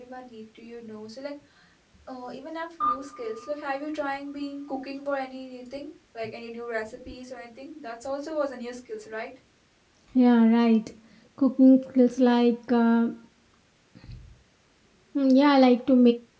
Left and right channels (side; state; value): both; identical; correlation 1.00